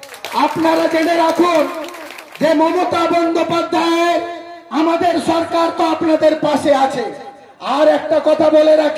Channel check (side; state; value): both; identical; correlation 1.00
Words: আপনারা জেনে রাখুন যে মমতা বন্দ্যোপাধ্যায় আমাদের সরকার তো আপনাদের পাশে আছে। আর একটা কথা বলে